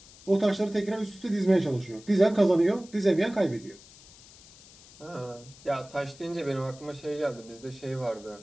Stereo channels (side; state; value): left; noise; hiss, 22 dB below the sound